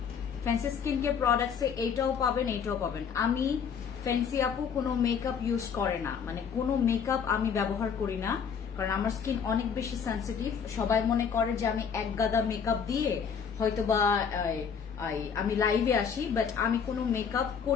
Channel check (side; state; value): right; quieter; 6.9 dB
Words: ফ্যান্সি স্কিন কেয়ার প্রোডাক্টস এ এইটাও পাবেন, এইটাও পাবেন। আমি ফ্যান্সি আপু কোনো মেকআপ ইউজ করে না, মানে কোনো মেকআপ আমি ব্যবহার করি না, কারণ আমার স্কিন অনেক বেশি সেন্সিটিভ। সবাই মনে করে যে আমি এক গাদা মেকআপ দিয়ে হয়তো বা আমি লাইভে আসি, বাট আমি কোনো মেকআপ